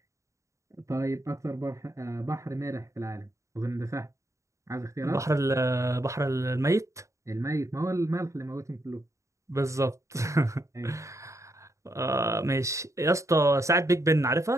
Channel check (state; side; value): late; left; 0.15 ms